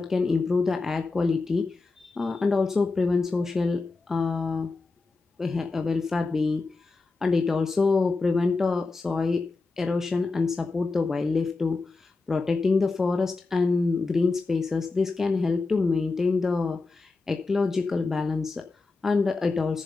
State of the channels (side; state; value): right; quieter; 3.8 dB